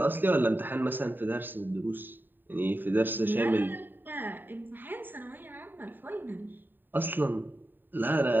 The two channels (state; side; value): late; left; 0.092 ms